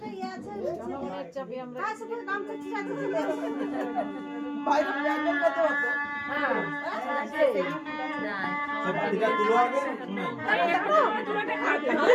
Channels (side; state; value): both; identical; correlation 1.00